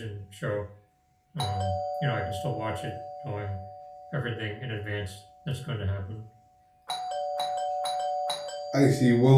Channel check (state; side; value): identical; both; correlation 1.00